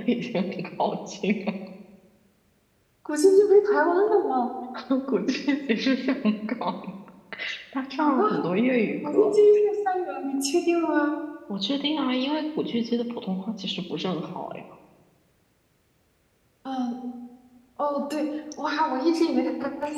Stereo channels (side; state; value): both; identical; correlation 1.00